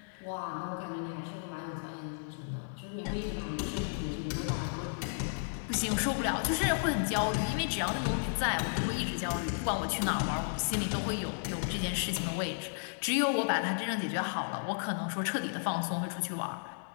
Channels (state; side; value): silent; right; digital silence